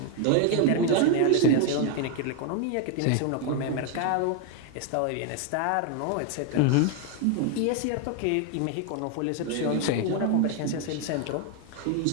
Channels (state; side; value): different; both; correlation 0.01